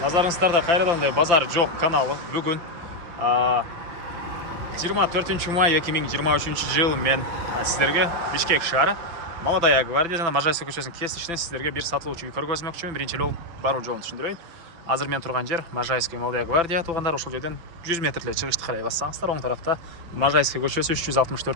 Назарыңыздарда қайрадан базар жоқ каналы. Бүгін 24 май 2023 жыл мен сіздерге Бишкек шары Молодая гвардия жана Можайская көшесінің кесішінен сіздерге бір сатылушы үй көргөзмөкчүмүн. Биринчи жол баруу жолун түшүндүрөйүн. Азыр мен турган жер Можайская Молодая гвардия туғандар. Ошол жерден 100 метрле чыгышты карай бассаңыздар, оң тарафта Можайская көчөсү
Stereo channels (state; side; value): late; left; 5.9 ms